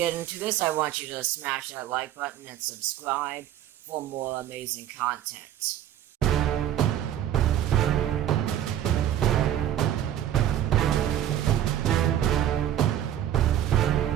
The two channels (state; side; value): quieter; left; 11.3 dB